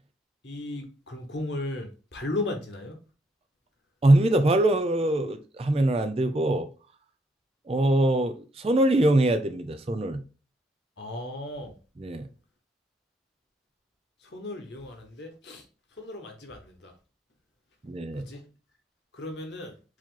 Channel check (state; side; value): normal; both; correlation 0.73